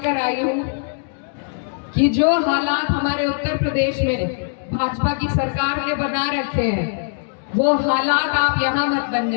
आई हूँ कि जो हालात हमारे उत्तर प्रदेश में भाजपा की सरकार ने बना रखे हैं, वो हालात आप यहाँ मत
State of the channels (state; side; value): silent; right; digital silence